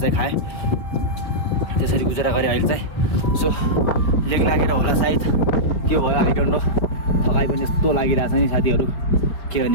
खाएँ त्यसरी गुजारा गरेँ अहिले चाहिँ सो लेग लागेर होला सायद के भयो आई डोन्ट नो थकाइ पनि यस्तो लागिरहेछ नि साथीहरू के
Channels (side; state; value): right; late; 4.8 ms